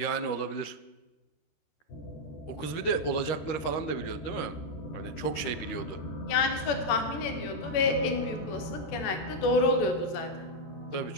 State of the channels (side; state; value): right; late; 13 ms